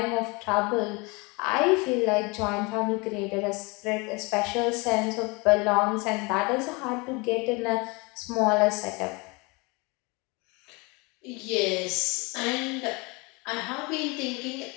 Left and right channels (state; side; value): quieter; right; 27.6 dB